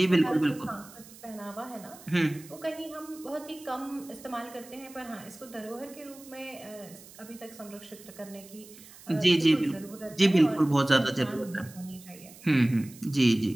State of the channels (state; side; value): noise; right; hiss, 20 dB below the sound